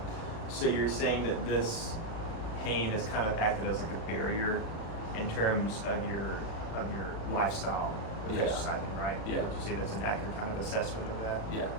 So you're saying that this pain has kind of acted as like a barrier in terms of your lifestyle with Yeah. exercising, right? Yeah. Would you say that's an accurate kind of assessment of that? yeah.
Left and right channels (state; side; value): late; right; 36 ms